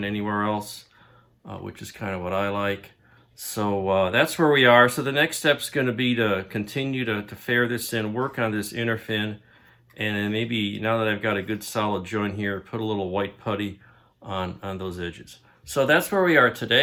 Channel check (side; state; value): both; identical; correlation 1.00